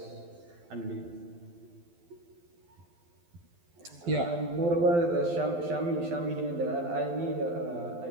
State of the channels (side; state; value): left; late; 12 ms